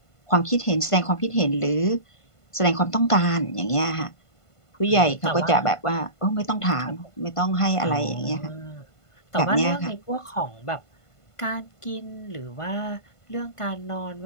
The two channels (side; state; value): right; late; 1.5 ms